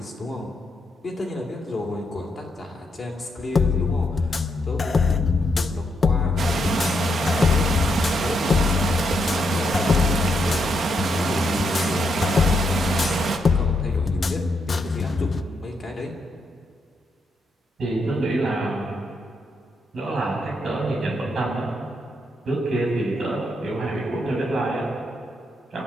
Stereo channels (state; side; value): normal; both; correlation 0.79